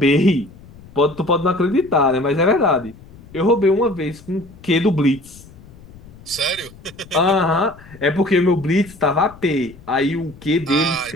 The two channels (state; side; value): noise; left; rumble, 21 dB below the sound